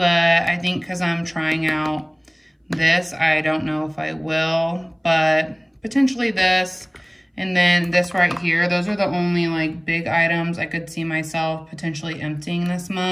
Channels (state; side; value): identical; both; correlation 1.00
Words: I think because I'm trying out this, I don't know if I will, but potentially this. And then this right here, those are the only like big items I could see myself potentially emptying this